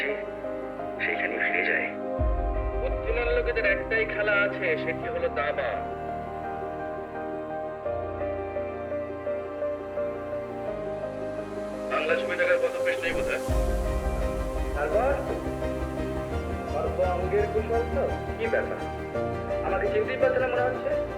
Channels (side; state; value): both; identical; correlation 1.00